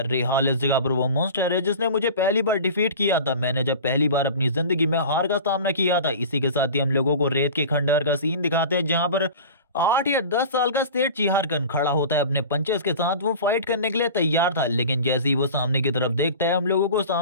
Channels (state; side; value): inverted; both; correlation -0.36